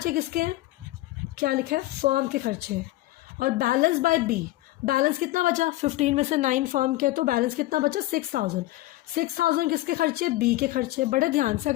किसके हैं? क्या लिखा है? फर्म के खर्चे हैं। और बैलेंस बाय बी, बैलेंस कितना बचा? 15 में से 9 फर्म के, तो बैलेंस कितना बचा? 6,000। 6,000 किसके खर्चे? बी के खर्चे। बड़े ध्यान से,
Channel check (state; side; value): quieter; right; 17.6 dB